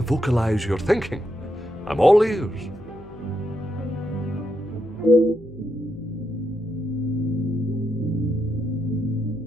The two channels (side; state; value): left; noise; hum, 21 dB below the sound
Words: vocalize your thinking. I'm all ears.